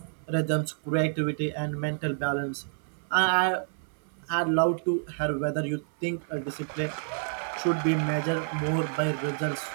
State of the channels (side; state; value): left; silent; 59 dB below the other